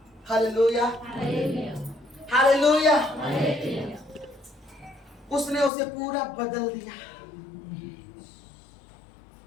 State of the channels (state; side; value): drops out; right; at 5.7 s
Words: हालेलुया। हालेलुया। उसने उसे पूरा बदल दिया।